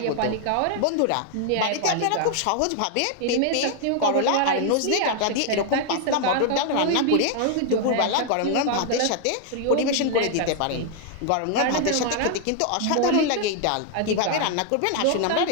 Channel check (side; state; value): both; different; correlation 0.00